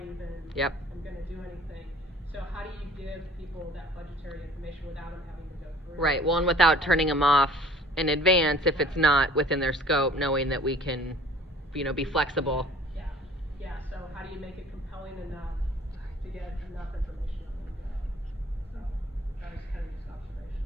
even. Yep. I'm gonna do anything. So how do you give people that budgetary information without them having to go through? Right, well, and without turning them off in advance if it's not within their scope, knowing that we can, you know, be flexible. Yeah, so how do you make it compelling enough to get enough information on them to go? So, that was kind of just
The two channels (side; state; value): both; normal; correlation 0.51